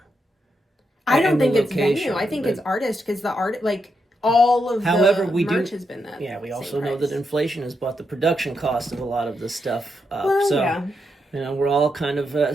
I don't and the think it's location, venue. I think but- it's artist, because the art, like, all of However, the we do- merch has been that. Yeah, we same also know price. that inflation has brought the production cost of a lot of this stuff up. Well, so, yeah. we're all kind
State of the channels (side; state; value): both; normal; correlation 0.83